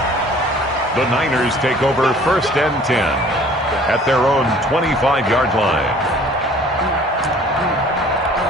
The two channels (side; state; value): both; normal; correlation 0.52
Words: The Niners take over 1st and 10 at their own 25-yard line.